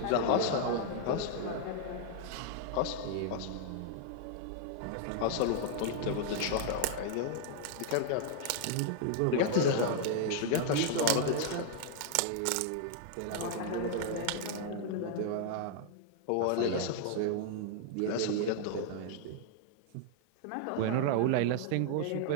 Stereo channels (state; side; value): different; both; correlation -0.01